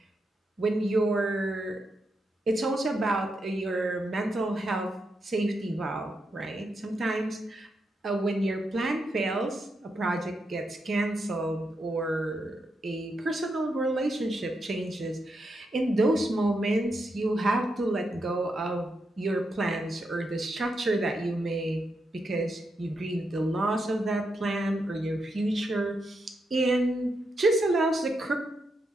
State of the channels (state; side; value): normal; both; correlation 0.83